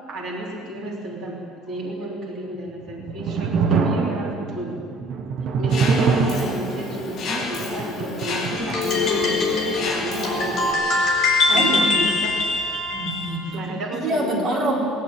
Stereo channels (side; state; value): both; normal; correlation 0.53